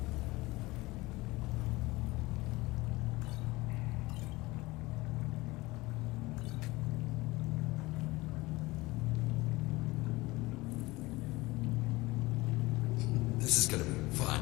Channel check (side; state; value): right; quieter; 21.0 dB